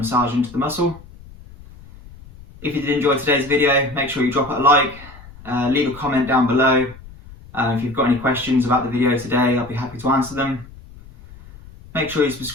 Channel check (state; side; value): noise; left; rumble, 20 dB below the sound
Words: into the muscle. If you did enjoy today's video, make sure you drop it a like, leave a comment down below. If you've got any questions about the video today, I'll be happy to answer them. Make sure you